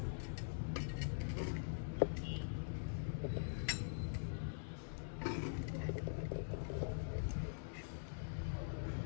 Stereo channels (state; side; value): silent; right; digital silence